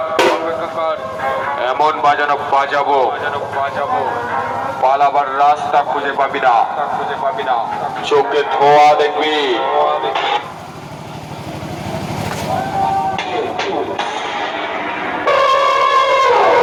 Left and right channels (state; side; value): identical; both; correlation 1.00